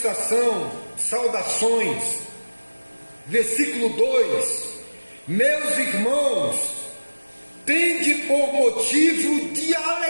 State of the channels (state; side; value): inverted; both; correlation -1.00